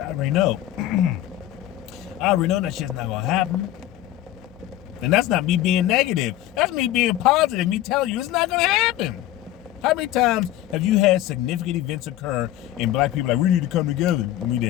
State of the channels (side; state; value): right; quieter; 13.8 dB